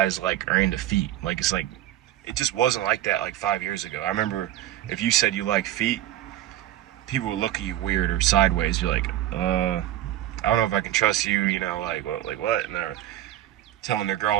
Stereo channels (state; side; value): quieter; left; 13.3 dB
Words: like are into feet. Like it's like it just wasn't like that like 5 years ago. I remember if you said you like feet, people would look at you weird or sideways. You're like, I don't know if I can trust you. Like what? And they're telling their